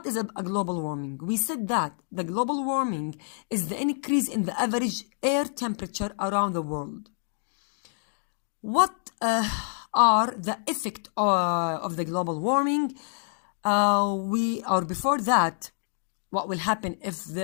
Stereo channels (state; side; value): silent; right; digital silence